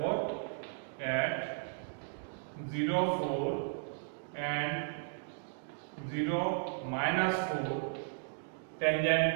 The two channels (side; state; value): left; silent; digital silence